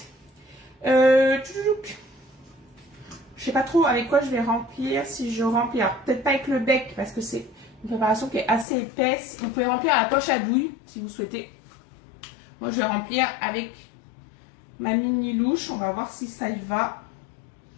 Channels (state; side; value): drops out; right; at 8.7 s